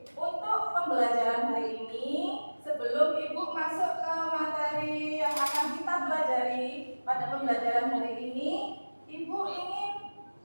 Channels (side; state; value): both; inverted; correlation -1.00